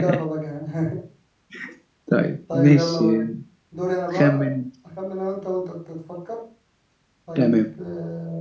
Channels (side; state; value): both; identical; correlation 1.00